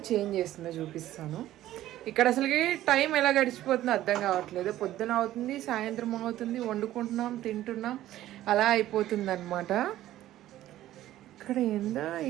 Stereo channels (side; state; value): left; quieter; 14.0 dB